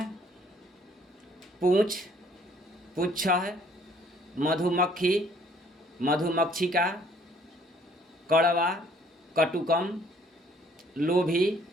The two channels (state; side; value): normal; both; correlation 0.61